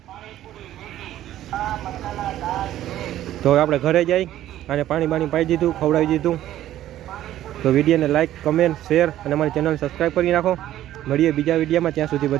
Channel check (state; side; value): quieter; left; 13.0 dB